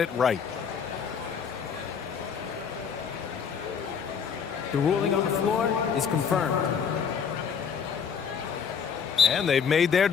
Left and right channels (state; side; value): quieter; right; 6.8 dB